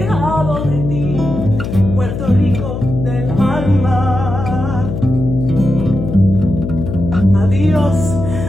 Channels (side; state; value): left; noise; hum, 5 dB below the sound